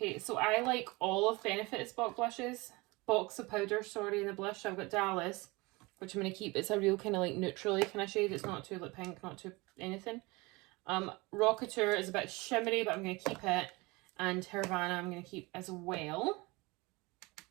so I like all of Benefit's box of powders, sorry, in the blush. So I've got Dallas, which I'm going to keep. It's a real kind of like neutrally kind of shade. It's not too like pink, not too anything. Rocketeur is a bit shimmery, but I'm going to keep it. And Havana I'm going to keep as well.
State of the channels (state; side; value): quieter; left; 24.2 dB